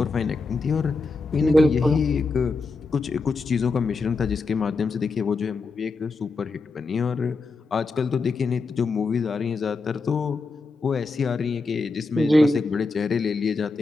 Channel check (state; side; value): quieter; right; 3.8 dB